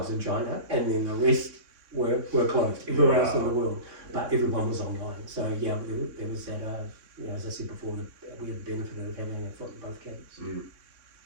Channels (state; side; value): late; left; 3.6 ms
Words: in China, and then the rest were closed everywhere else in the world, but everyone was online. So there was that, as I said before, we had the benefit of having a foot in both camps.